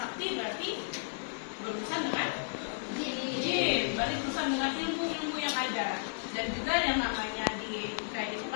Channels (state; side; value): silent; right; digital silence